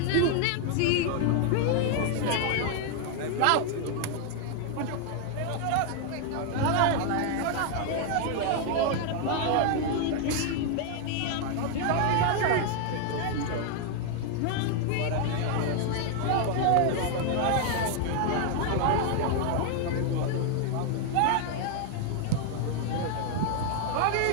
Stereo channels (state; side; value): different; both; correlation 0.00